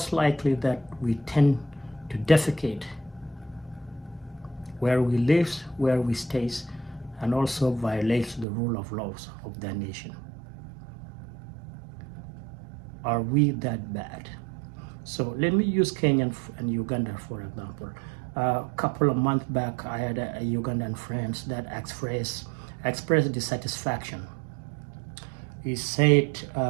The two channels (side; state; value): left; drops out; at 8.5 s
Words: likely that we tend to defecate where we live, where we stay, and also violates the rule of laws of the nation. Are we that bad? So let me use Kenya and Uganda for example. A couple of months back, I had a Ugandan friend that expressed dissatisfaction. He said